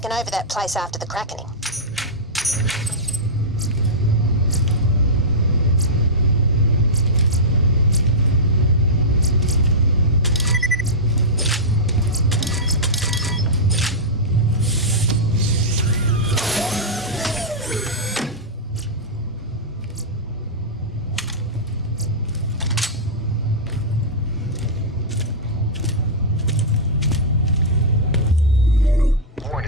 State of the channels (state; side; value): normal; both; correlation -0.11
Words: over that place after the crackening.